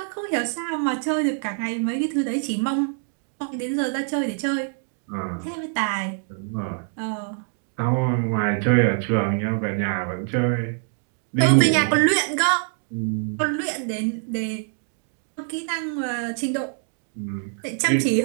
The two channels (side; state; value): left; silent; 61 dB below the other